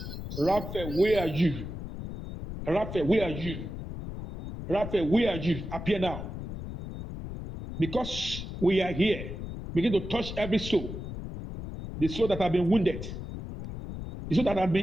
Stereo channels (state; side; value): noise; left; rumble, 8 dB below the sound